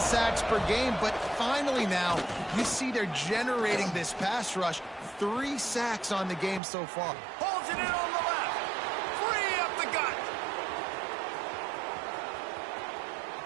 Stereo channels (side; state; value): left; drops out; at 6.6 s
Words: per game, but finally now you see they're generating this pass rush. 3 sacks on the game so far. Holds it in on the left. 3 up the gut.